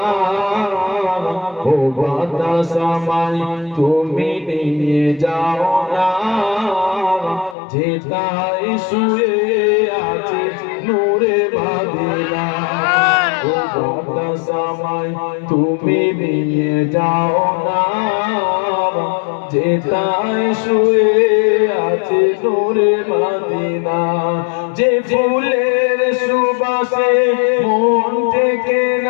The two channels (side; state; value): right; drops out; at 7.6 s